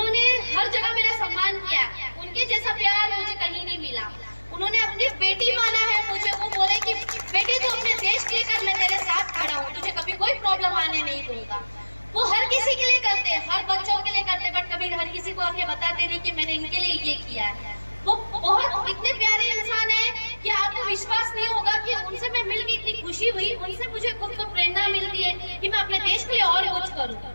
हर जगह मेरा सम्मान किया। उनके जैसा प्यार मुझे कहीं नहीं मिला। उन्होंने अपनी बेटी माना है मुझे। वो बोले कि बेटी तो अपने देश के लिए कर, मैं तेरे साथ खड़ा हूँ, तुझे कभी कोई प्रॉब्लम आने नहीं दूंगा। वो हर किसी के लिए करते, हर बच्चों के लिए करते, बट कभी हर किसी को आके बताते नहीं कि मैंने इनके लिए ये किया है। वो बहुत इतने प्यारे इंसान है कि आपको विश्वास नहीं होगा कि उनसे मैं मिल के इतनी खुशी हुई। उनसे मुझे खुद को प्रेरणा मिलती है कि मैं अपने देश के लिए और कुछ करूं।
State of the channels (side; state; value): both; inverted; correlation -1.00